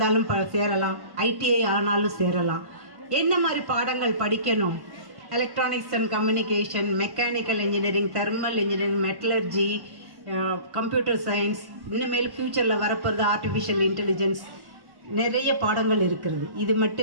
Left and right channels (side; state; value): left; late; 1.1 ms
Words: சேரலாம், ஐடிஐ ஆனாலும் சேரலாம். என்ன மாதிரி பாடங்கள் படிக்கணும்? Electronics and communication, mechanical engineering, thermal engineering, metallurgy, computer science, இன்னமேல் ஃப்யூச்சரில் வரப்போகிறது ஆர்டிஃபிஷியல் இன்டெலிஜென்ஸ், நிறைய பாடங்கள் இருக்கிறது. இது